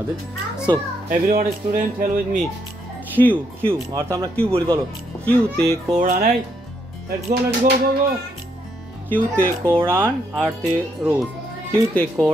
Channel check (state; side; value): normal; both; correlation 0.75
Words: So everyone student hell with me Q Q অর্থাৎ আমরা কিউ বলি, বলো কিউতে কোরআন। এই লেটস গো গো গো। কিউতে কোরআন আরতে রোজ কিউতে